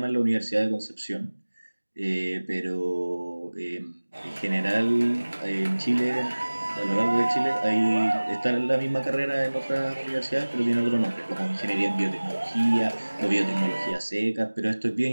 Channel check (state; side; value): inverted; both; correlation -1.00